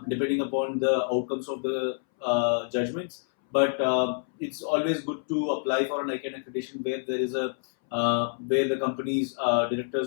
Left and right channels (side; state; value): right; silent; 60 dB below the other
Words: depending upon the outcomes of the judgments. But it's always good to apply for an ICANN accreditation where there is where the company's directors,